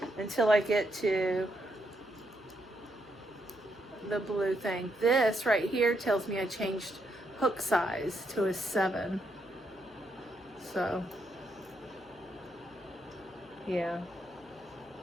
until I get to the blue thing. This right here tells me I changed hook size to a 7. So, yeah.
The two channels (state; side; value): noise; left; hum, 25 dB below the sound